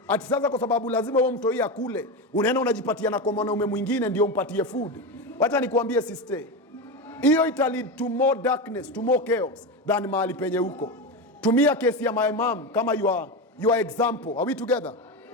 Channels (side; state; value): both; normal; correlation 0.18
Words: ati sasa kwa sababu lazima huyo mtoi akule, unaenda unajipatia na kwa mwanaume mwingine ndio umpatie food. Wacha nikuambie sister, hiyo ita lead to more darkness, to more chaos than mahali penye huko. Tumia kesi ya my mom kama your example. Are we together?